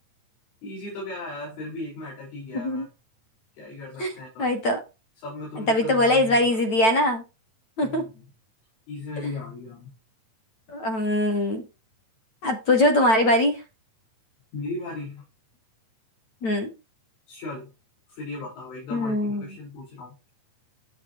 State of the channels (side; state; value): right; late; 9.0 ms